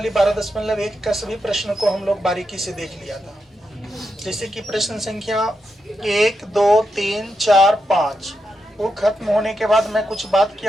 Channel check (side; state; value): both; normal; correlation 0.85